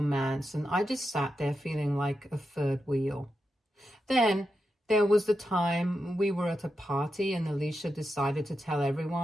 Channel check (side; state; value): both; normal; correlation 0.87